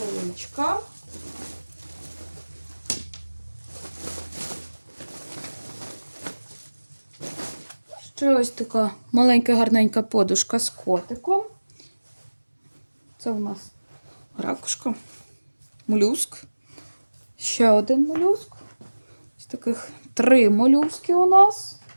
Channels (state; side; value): inverted; both; correlation -1.00